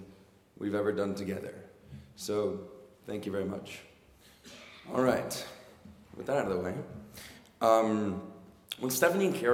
we've ever done together. So, thank you very much. All right, with that out of the way, when Stephanie and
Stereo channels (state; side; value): identical; both; correlation 1.00